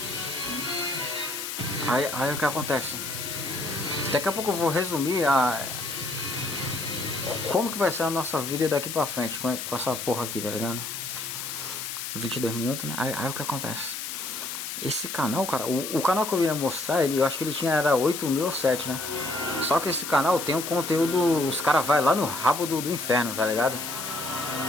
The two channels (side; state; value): left; noise; hiss, 6 dB below the sound